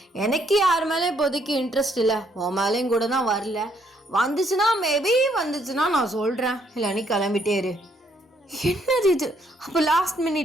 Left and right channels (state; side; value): normal; both; correlation 0.70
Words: எனக்கு யார் மேலே இப்போதைக்கு இன்ட்ரெஸ்ட் இல்லை. உன் மேலேயும் கூட தான் வரல. வந்துச்சுன்னா மேபி வந்துச்சுன்னா நான் சொல்கிறேன், இல்லை நீ கிளம்பிட்டே இரு. என்னது இது? அப்போ லாஸ்ட்